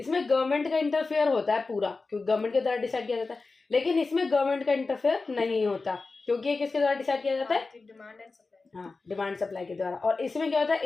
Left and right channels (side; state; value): right; quieter; 3.9 dB